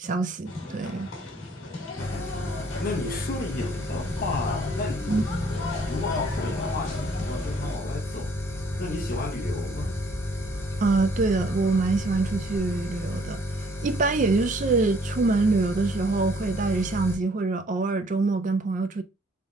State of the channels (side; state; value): both; normal; correlation 0.61